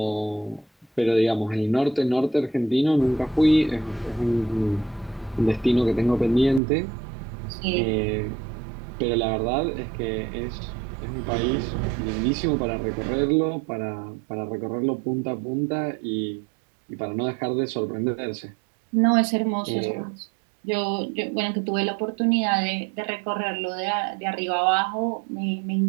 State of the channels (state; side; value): drops out; left; at 6.6 s